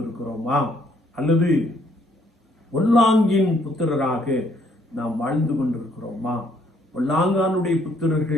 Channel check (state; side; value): normal; both; correlation 0.67